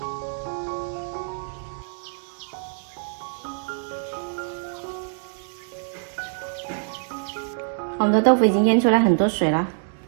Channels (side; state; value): left; silent; 62 dB below the other